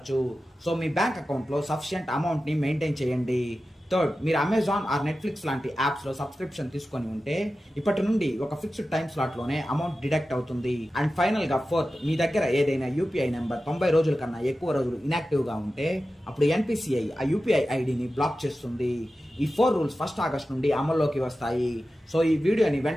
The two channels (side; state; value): both; normal; correlation 0.94